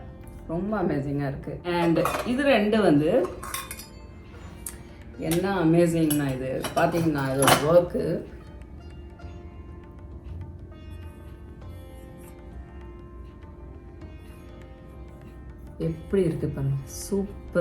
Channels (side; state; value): both; identical; correlation 1.00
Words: ரொம்ப அமேசிங்காக இருக்குது. அண்ட் இது 2 வந்து என்ன அமேசிங்னா, இது பார்த்தீங்கன்னா இதோட ஒர்க்கு எப்படி இருக்குது பாருங்க,